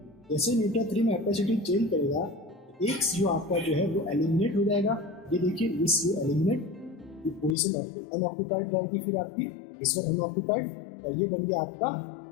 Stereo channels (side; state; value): right; drops out; at 7.6 s